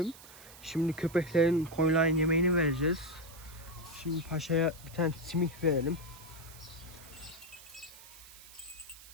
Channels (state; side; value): noise; right; hiss, 18 dB below the sound